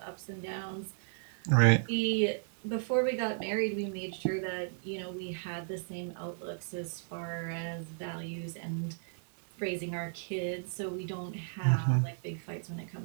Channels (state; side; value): silent; left; 55 dB below the other